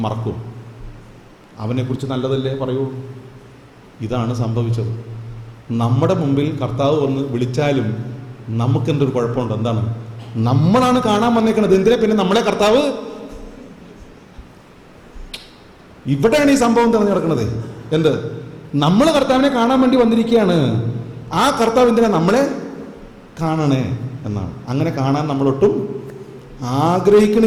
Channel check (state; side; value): identical; both; correlation 1.00